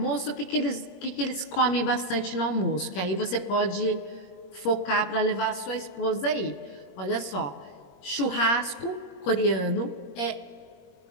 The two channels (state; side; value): late; right; 21 ms